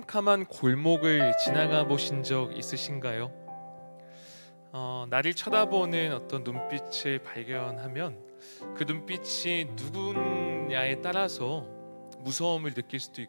골목을 지나가 보신 적 있으신가요? 나를 쳐다보는 어떤 눈빛을 발견하면 그 눈빛이 누구냐에 따라서 무서움을 느낄 수도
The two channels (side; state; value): both; inverted; correlation -1.00